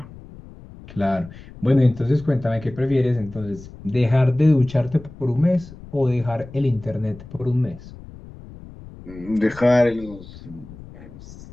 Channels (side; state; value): left; noise; rumble, 17 dB below the sound